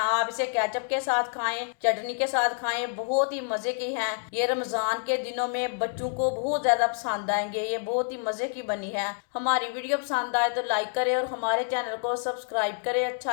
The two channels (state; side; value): silent; right; 56 dB below the other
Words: इसे केचप के साथ खाएं, चटनी के साथ खाएं, बहुत ही मज़े की हैं। ये रमज़ान के दिनों में बच्चों को बहुत ज़्यादा पसंद आएंगे। ये बहुत ही मज़े की बनी है। हमारी वीडियो पसंद आए तो लाइक करें और हमारे चैनल को सब्सक्राइब करें।